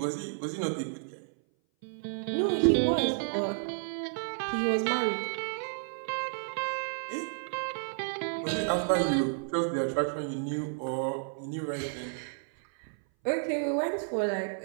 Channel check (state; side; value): silent; left; 57 dB below the other